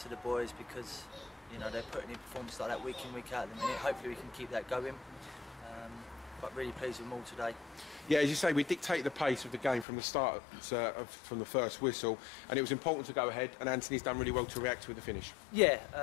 the boys because, you know, they're putting in performances like that week in, week out at the minute. Hopefully we can keep that going. But really pleased with them all today. Yeah, as you say, we dictated the pace of the game from the start, from the first whistle, and it was important to go ahead, and Anthony's done really well to react with the finish.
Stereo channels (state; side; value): drops out; right; at 9.9 s